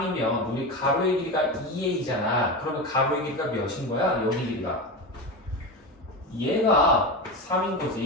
우리 가로의 길이가 2a잖아. 그러면 가로의 길이가 몇인 거야? 여기 길이가 얘가 3인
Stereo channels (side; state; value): both; normal; correlation 0.21